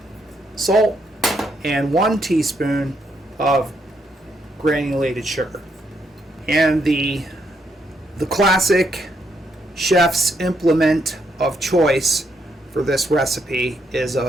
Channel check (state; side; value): normal; both; correlation 0.76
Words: salt and 1 teaspoon of granulated sugar. And the classic chef's implement of choice for this recipe is